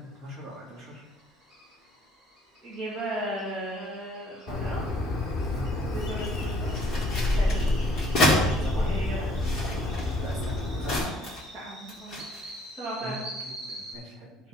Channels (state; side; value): normal; both; correlation 0.61